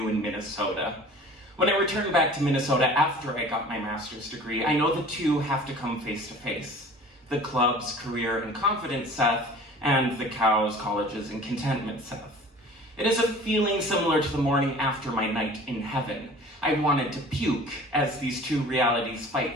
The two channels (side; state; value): both; normal; correlation 0.45